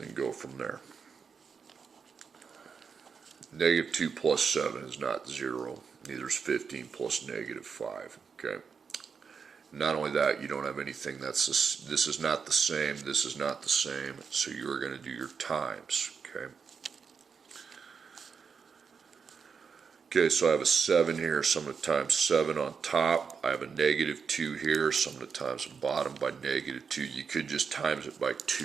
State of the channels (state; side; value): quieter; left; 5.9 dB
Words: go from there. Negative 2 plus 7 is not 0. Neither is 15 plus negative 5. Okay. Not only that, you don't have anything that's this is not the same, this is not the same, so you're going to do your times. Okay. Okay, so I have a 7 here, so I'm going to times 7 on top. I have a negative 2 here, so I'm going to times the bottom by negative 2. You could just times it by